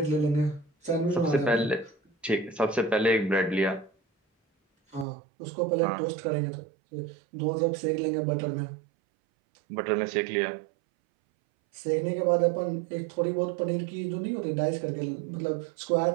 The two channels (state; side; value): drops out; left; at 5.1 s